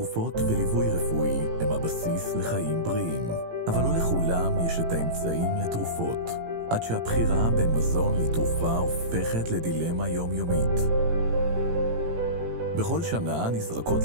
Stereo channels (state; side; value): late; left; 18 ms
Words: וליווי רפואי הם הבסיס לחיים בריאים, אבל לא לכולם יש את האמצעים לתרופות, עד שהבחירה בין מזון לתרופה הופכת לדילמה יומיומית. בכל שנה נזרקות